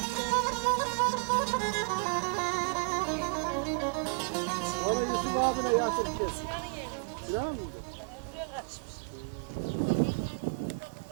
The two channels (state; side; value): quieter; left; 39.3 dB